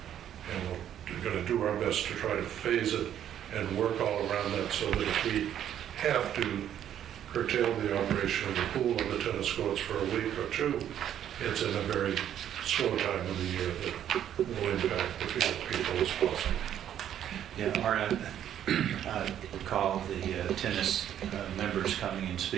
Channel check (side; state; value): left; quieter; 10.4 dB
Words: And we're going to do our best to try to phase it and work all around that so that if we have to curtail the operation of the pool or the tennis courts for a week or two, it's in a very slow time of the year that will impact the few people as possible. Yeah, Art, I recall the tennis members coming and